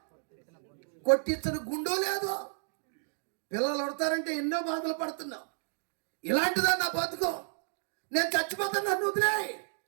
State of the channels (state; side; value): silent; left; digital silence